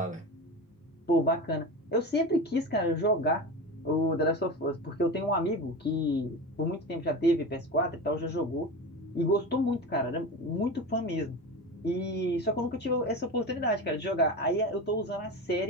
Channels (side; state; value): both; normal; correlation 0.26